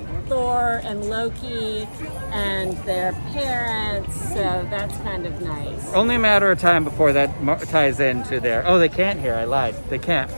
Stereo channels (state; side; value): inverted; both; correlation -1.00